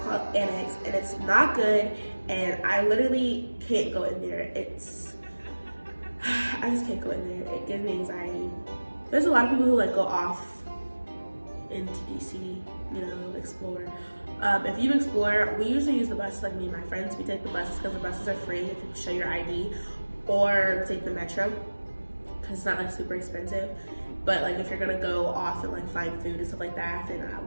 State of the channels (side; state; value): both; inverted; correlation -1.00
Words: called Annex, and it's not good, and I literally can't go in there. I just can't go in there. It gives me anxiety. There's a lot of people who like go off into DC, you know, explore. If you explore, we usually use the bus, like me and my friends. We take the buses because the buses are free if you show your ID, or take the metro because it's not like super expensive. But like if you're gonna go off and like find food and stuff like that, then